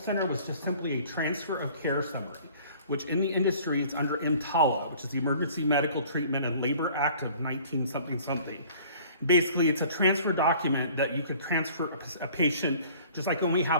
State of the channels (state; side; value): inverted; both; correlation -0.51